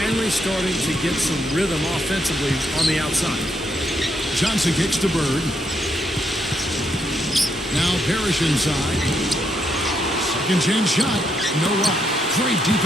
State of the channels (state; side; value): normal; both; correlation 0.77